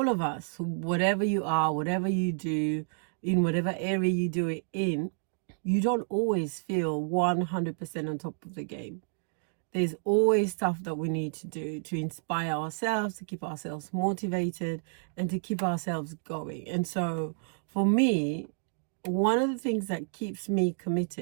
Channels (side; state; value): left; silent; 58 dB below the other